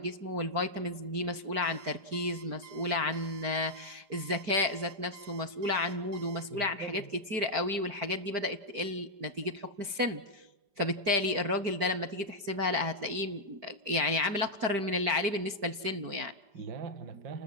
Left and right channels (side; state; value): left; late; 5.0 ms